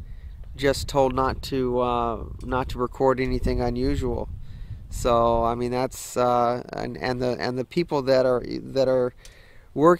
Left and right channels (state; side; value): identical; both; correlation 1.00